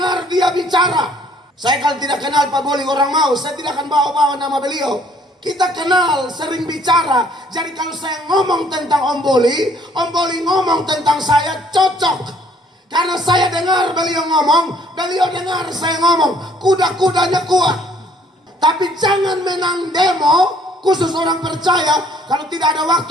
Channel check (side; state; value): both; normal; correlation 0.61